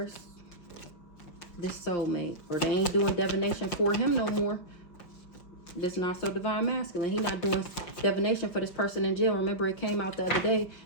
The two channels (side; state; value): right; late; 5.7 ms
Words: This soulmate. Or they ain't doing divination for him no more. This not so divine masculine. He not doing divination for this person in jail. Remember, it came out the other day